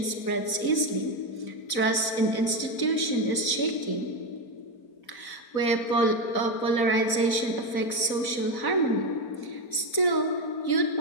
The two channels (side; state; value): right; late; 4.0 ms